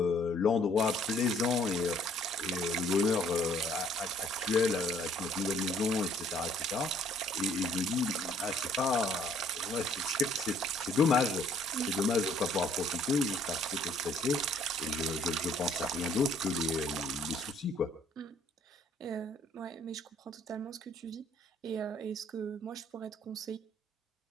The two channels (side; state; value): both; normal; correlation 0.61